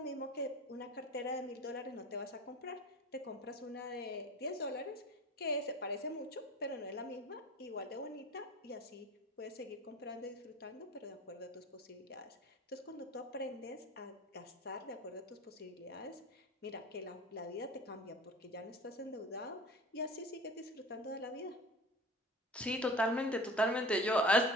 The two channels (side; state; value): both; normal; correlation 0.38